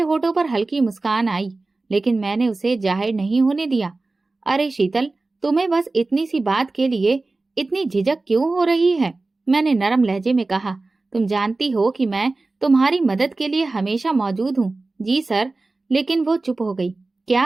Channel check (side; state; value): left; quieter; 3.4 dB